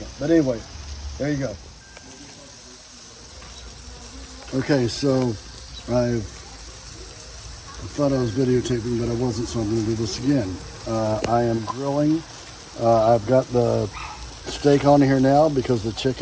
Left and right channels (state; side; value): identical; both; correlation 1.00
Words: But anyway, there you go. Okay, so I thought I was videotaping, but I wasn't, so I'm going to do this again. I am grilling. I've got the steak on here now because the